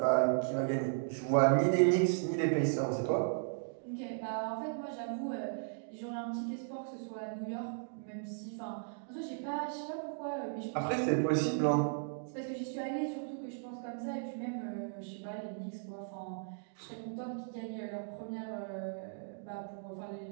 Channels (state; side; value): silent; left; digital silence